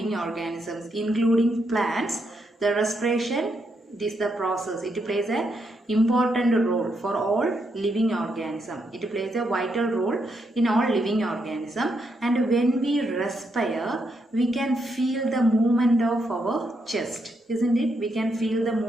organisms, including plants. The respiration, this is the process. It plays an important role for all living organism. It plays a vital role in all living organism. And when we respire, we can feel the movement of our chest, isn't it? We can feel the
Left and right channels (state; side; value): normal; both; correlation 0.79